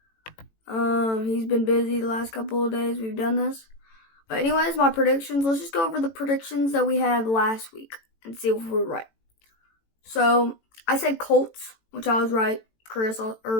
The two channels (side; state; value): right; late; 18 ms